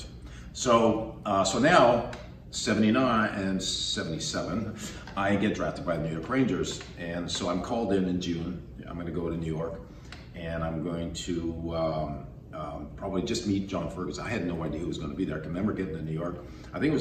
So now, 79 and 77, I get drafted by the New York Rangers. And so I'm called in June. I'm going to go to New York, and I'm going to probably just meet John Ferguson. I had no idea who was going to be there. I can remember getting to New York. I think it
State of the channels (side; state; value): both; identical; correlation 1.00